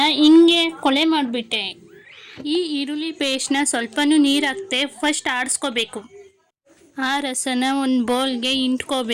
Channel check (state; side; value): identical; both; correlation 1.00